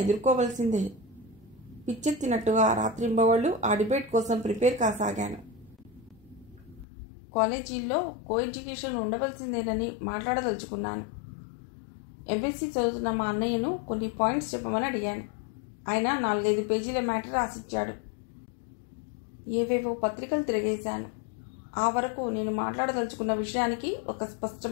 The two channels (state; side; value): drops out; right; at 6.9 s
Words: ఎదుర్కోవలసిందే. పిచ్చెత్తినట్టుగా రాత్రింబవళ్ళు ఆ డిబేట్ కోసం ప్రిపేర్ కాసాగాను. కాలేజీల్లో కో ఎడ్యుకేషన్ ఉండవలసిందేనని మాట్లాడదలుచుకున్నాను. ఎంఎస్సీ చదువుతున్న మా అన్నయ్యను కొన్ని పాయింట్స్ చెప్పమని అడిగాను. ఆయన 4-5 పేజీల మ్యాటర్ రాసిచ్చాడు. ఏవేవో పత్రికలు తిరిగేశాను. ఆ వరకు నేను మాట్లాడదలుచుకున్న విషయానికి ఒక